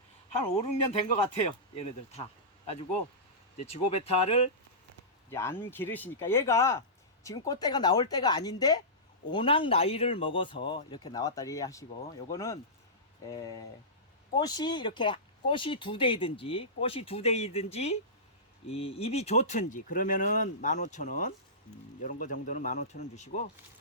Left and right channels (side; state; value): both; normal; correlation -0.18